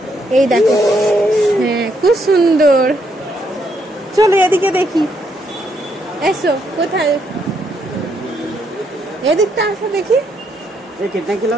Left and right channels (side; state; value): both; normal; correlation 0.75